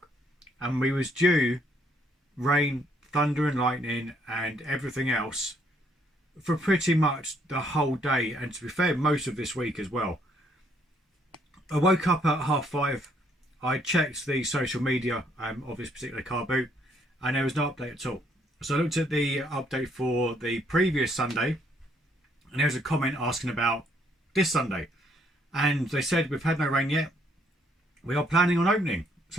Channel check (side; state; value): both; normal; correlation 0.69